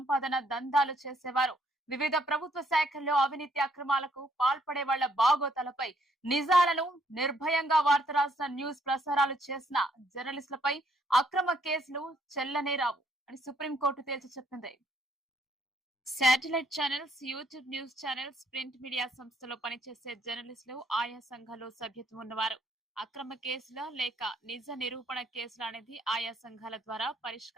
దందాలు చేసేవారు, వివిధ ప్రభుత్వ శాఖల్లో అవినీతి అక్రమాలకు పాల్పడే వాళ్ల బాగోతాలపై నిజాలను నిర్భయంగా వార్త రాసిన న్యూస్ ప్రసారాలు చేసిన జర్నలిస్టులపై అక్రమ కేసులు చెల్లనే రావు అని సుప్రీంకోర్టు తేల్చి చెప్పింది. Satellite channels, YouTube news channels, print media సంస్థలో పనిచేసే జర్నలిస్టులు ఆయా సంఘాల్లో సభ్యత్వం ఉన్నవారు అక్రమ కేసుల లేక నిజ నిరూపణ కేసుల అనేది ఆయా సంఘాల ద్వారా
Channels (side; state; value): both; normal; correlation 0.68